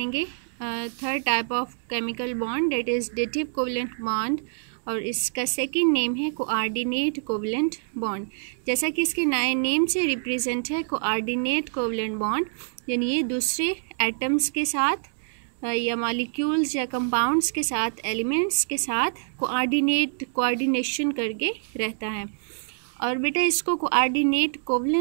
third type of chemical bond, that is dative covalent bond, और इसका सेकंड नेम है कोऑर्डिनेट कोवलेंट बॉन्ड। जैसा कि इसके नए नेम से रिप्रेजेंट है, कोऑर्डिनेट कोवलेंट बॉन्ड यानी ये दूसरे एटम्स के साथ या मॉलिक्यूल्स या कंपाउंड्स के साथ, एलिमेंट्स के साथ कोऑर्डिनेशन करके रहता है। और बेटा इसको कोऑर्डिनेट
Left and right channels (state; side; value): silent; left; 61 dB below the other